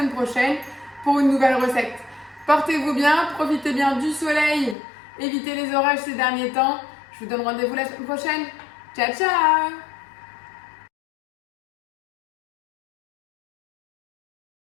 prochaine pour une nouvelle recette. Portez-vous bien, profitez bien du soleil, évitez les orages ces derniers temps. Je vous donne rendez-vous la semaine prochaine. Ciao, ciao!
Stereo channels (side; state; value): right; drops out; at 4.8 s